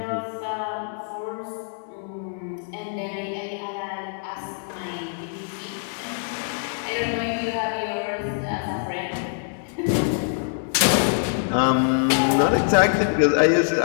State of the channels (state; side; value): silent; right; 61 dB below the other